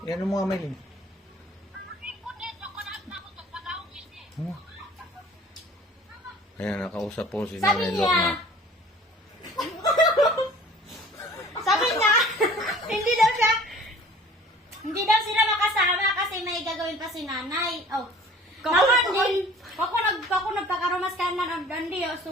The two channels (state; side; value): normal; both; correlation 0.48